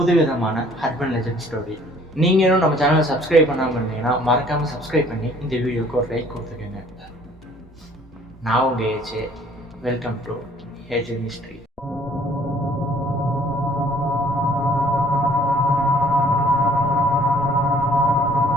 ஹர்பன் லெஜண்ட் ஸ்டோரி. நீங்களும் நம்ம சேனலை சப்ஸ்கிரைப் பண்ணாமல் இருந்தீங்கன்னா மறக்காமல் சப்ஸ்கிரைப் பண்ணி இந்த வீடியோக்கு ஒரு லைக் கொடுத்துக்கோங்க. நான் உங்கள் A J. Welcome to A J mystery.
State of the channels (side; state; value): both; normal; correlation 0.57